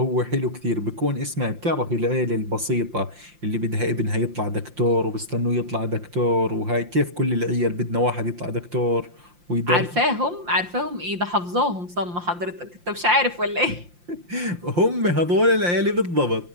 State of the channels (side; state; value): left; late; 5.7 ms